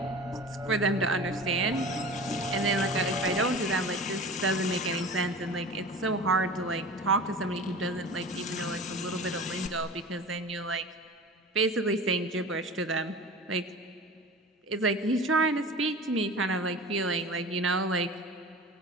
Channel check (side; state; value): both; normal; correlation 0.36